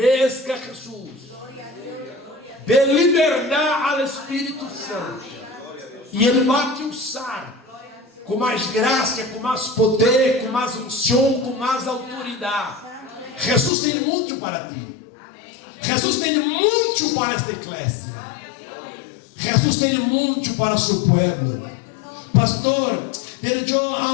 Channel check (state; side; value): drops out; right; at 13.7 s